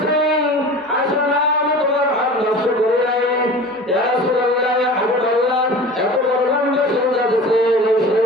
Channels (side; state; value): both; normal; correlation 0.38